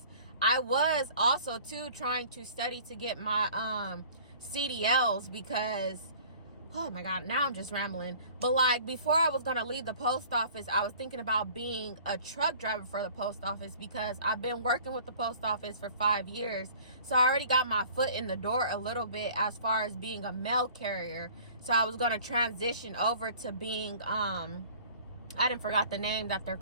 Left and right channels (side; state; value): both; inverted; correlation -0.49